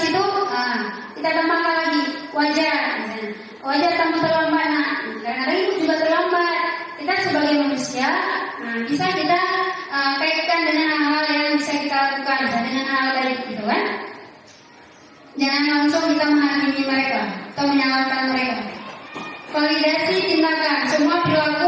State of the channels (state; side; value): identical; both; correlation 1.00